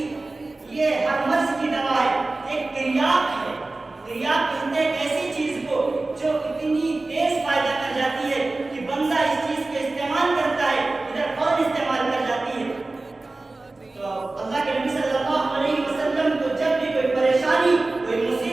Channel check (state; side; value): quieter; left; 3.2 dB